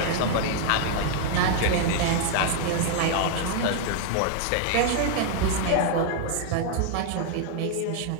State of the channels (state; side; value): different; both; correlation 0.00